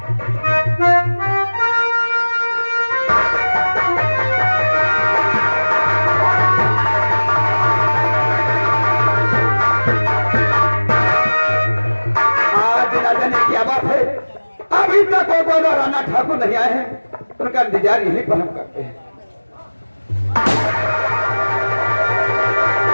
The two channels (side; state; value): both; inverted; correlation -1.00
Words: आज ना जाने क्या बात है, अभी तक वो दोनों राणा ठाकुर नहीं आए हैं, उनका इंतजार यहीं पर हम करते हैं।